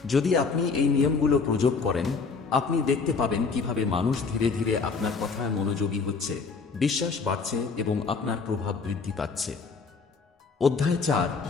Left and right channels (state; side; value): quieter; right; 4.8 dB